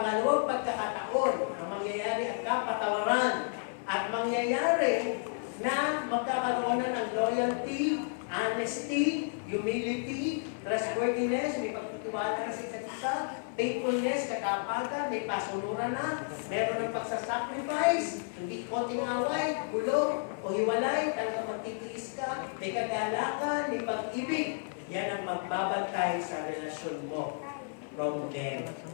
pagkakataon ang mangyayari at kapatawaran. At mangyayari na magkakaroon na ng loyalty, honesty, humility, trustworthiness, may pagtitiwala na sa isa't isa, faithfulness, katapagan, may pasunuran na, meron ng pagsasacrifice, hindi konting away, gulo, o hiwalay, talagang magtitiis ka, may kagalakan, may pag-ibig. Yan ang magbabantay sa relasyon mo from them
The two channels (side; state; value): right; silent; 57 dB below the other